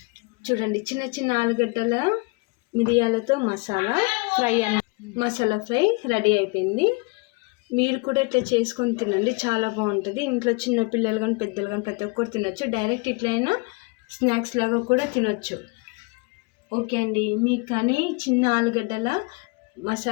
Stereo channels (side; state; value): right; quieter; 28.9 dB